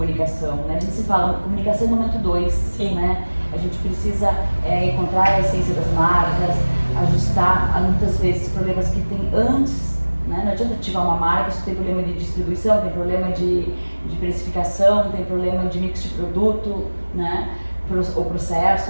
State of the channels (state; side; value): inverted; both; correlation -1.00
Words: né? A gente se fala, comunicação é momento 2, né? A gente precisa encontrar a essência das marcas, ajustar muitas vezes problemas que tem antes, né? Não adianta ativar uma marca se tem problema de distribuição, tem problema de precificação, tem problema de mix de produto, né? O